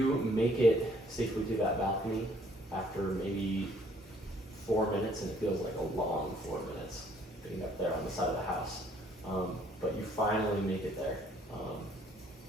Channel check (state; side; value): normal; both; correlation 0.62